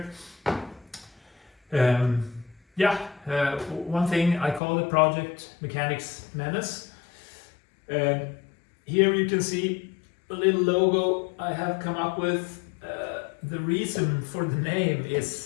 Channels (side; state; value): right; drops out; at 4.6 s